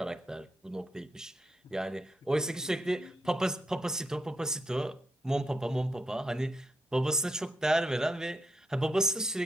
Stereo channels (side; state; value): both; normal; correlation 0.82